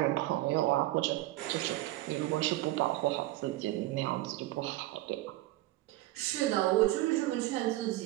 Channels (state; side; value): quieter; left; 17.0 dB